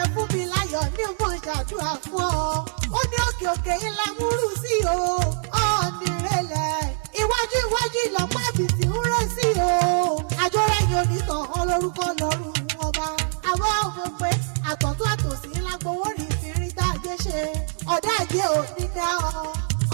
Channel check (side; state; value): left; silent; 62 dB below the other